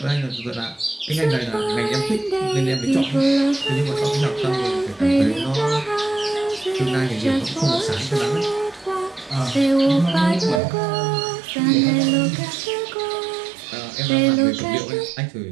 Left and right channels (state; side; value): drops out; left; at 10.6 s